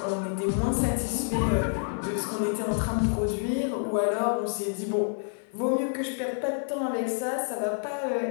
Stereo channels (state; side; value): silent; right; digital silence